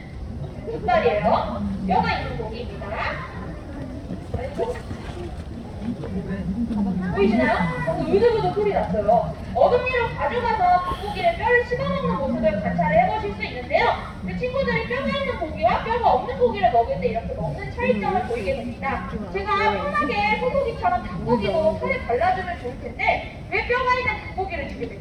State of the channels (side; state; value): both; identical; correlation 1.00